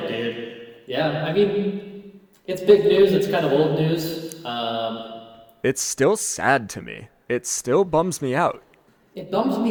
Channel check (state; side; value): identical; both; correlation 1.00